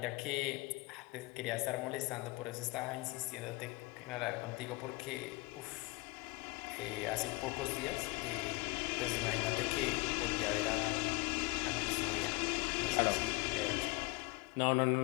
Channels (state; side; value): quieter; right; 24.6 dB